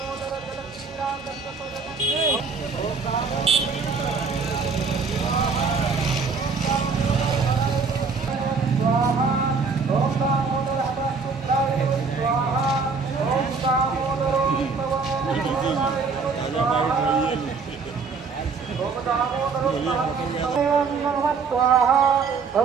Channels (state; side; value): quieter; left; 4.9 dB